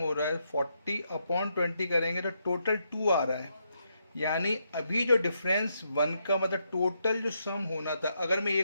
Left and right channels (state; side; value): inverted; both; correlation -0.79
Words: रहा है 40 अपॉन 20 करेंगे तो टोटल 2 आ रहा है। यानी अभी जो डिफरेंस 1 का मतलब टोटल जो सम होना था, अगर मैं